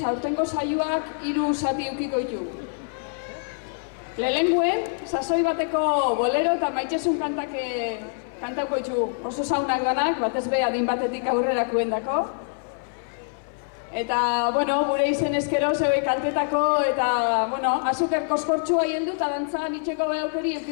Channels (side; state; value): right; silent; 58 dB below the other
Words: aurtengo saioak 3 zati ukiko ditu. Lehenguen, sasoi bateko bolero eta maitxesun kantauko ditu oso saunak danak, batez be adin batetik aurrerakuen dako. Eta, bueno, gure izen eskero zeue kantetako eta, bueno, azuker koskortxua hieldu eta dantzan itxeko behaukeri